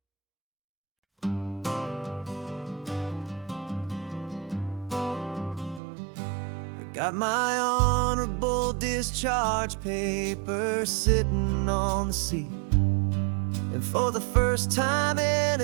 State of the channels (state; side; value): drops out; left; at 5.8 s